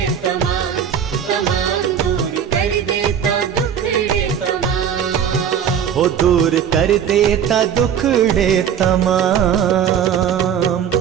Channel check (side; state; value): left; quieter; 8.4 dB